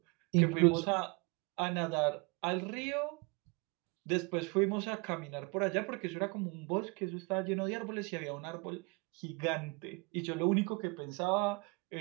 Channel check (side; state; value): left; quieter; 30.0 dB